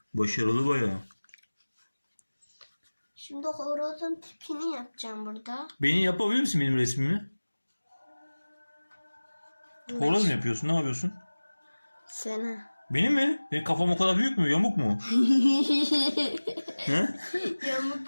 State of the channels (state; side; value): inverted; both; correlation -1.00